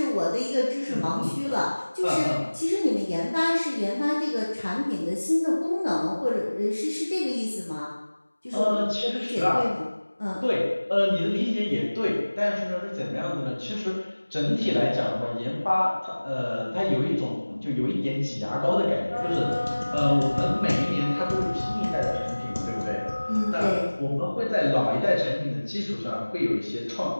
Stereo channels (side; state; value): both; inverted; correlation -1.00